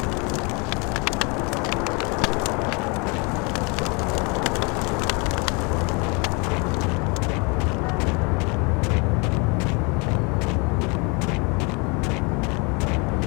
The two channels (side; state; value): right; quieter; 30.9 dB